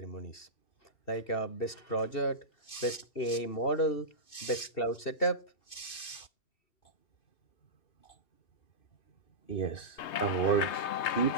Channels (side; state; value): right; late; 2.5 ms